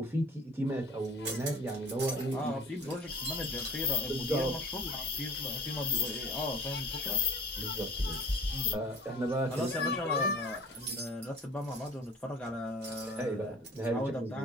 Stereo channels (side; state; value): both; normal; correlation 0.44